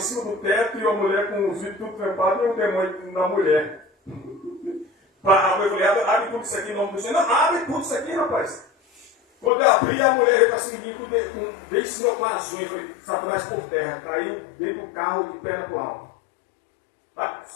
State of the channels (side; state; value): right; drops out; at 9.5 s